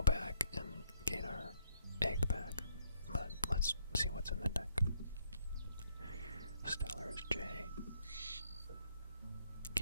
back and gain our egg back. But let's see what's in the deck. Stellar is J.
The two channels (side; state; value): both; inverted; correlation -0.71